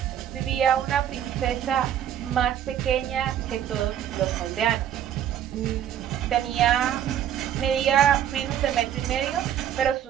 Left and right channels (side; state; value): left; quieter; 10.3 dB